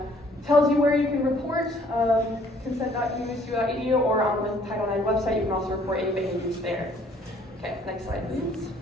tells you where you can report consent.usu.edu, or on the Title IX website you can also report any behaviors there. Okay, next slide please.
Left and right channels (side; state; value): both; normal; correlation 0.60